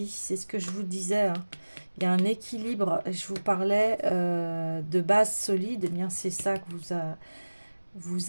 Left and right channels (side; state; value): both; inverted; correlation -1.00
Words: c'est ce que je vous disais. Hein. Il y a un équilibre, je vous parlais de base solide, eh bien c'est ça que